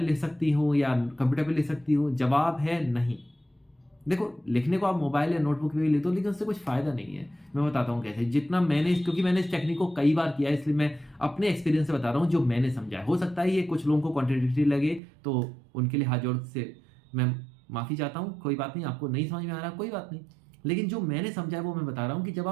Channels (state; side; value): drops out; left; at 15.0 s